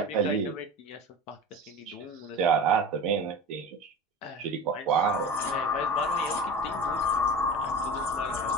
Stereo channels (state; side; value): normal; both; correlation 0.32